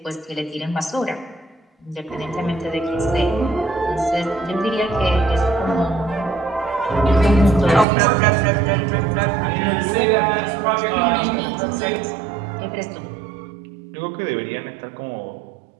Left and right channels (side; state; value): left; drops out; at 7.9 s